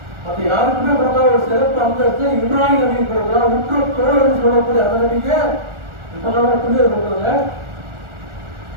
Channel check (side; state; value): left; late; 1.4 ms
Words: மற்ற யாருக்குமே கொடுத்தா ஒரு சிறப்பு அந்தஸ்து இப்ராஹிம் நபிக்கு கொடுக்குறா. உற்ற தோழர் சொல்லக்கூடிய அந்த நபிக்கு எப்பதான் பிள்ளைகள் கொடுக்குறாங்க,